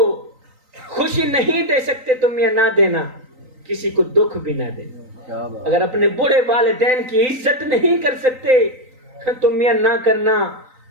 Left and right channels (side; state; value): left; late; 3.9 ms